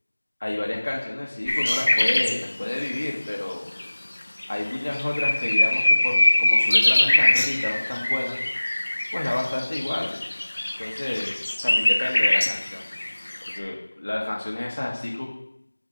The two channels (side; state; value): both; inverted; correlation -1.00